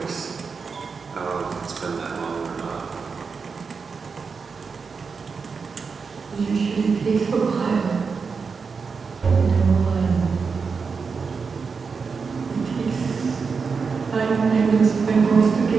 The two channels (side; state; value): left; quieter; 5.2 dB